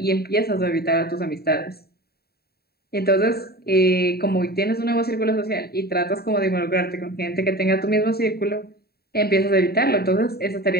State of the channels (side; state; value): right; late; 0.45 ms